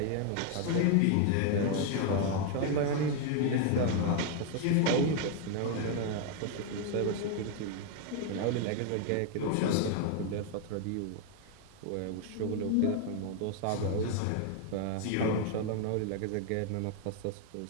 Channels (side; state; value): both; different; correlation 0.00